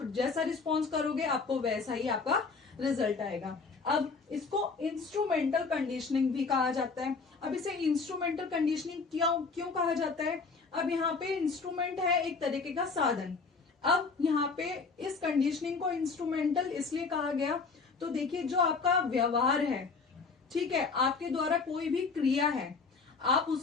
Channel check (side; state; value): right; quieter; 4.6 dB